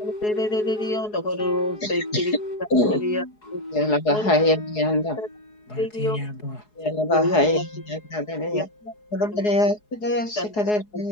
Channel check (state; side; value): late; right; 4.7 ms